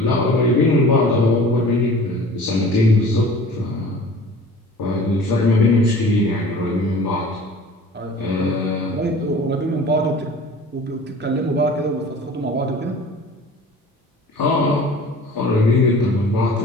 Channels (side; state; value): both; normal; correlation 0.44